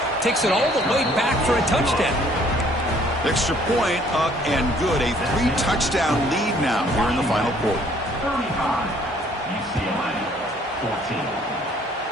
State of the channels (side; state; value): both; normal; correlation 0.60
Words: Takes it all the way back for a touchdown. Extra point up and good. A 3-touchdown lead now here in the final quarter. 35, UCLA, 14.